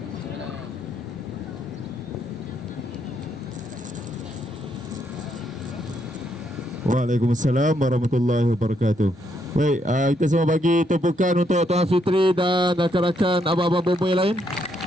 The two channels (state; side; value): normal; both; correlation 0.75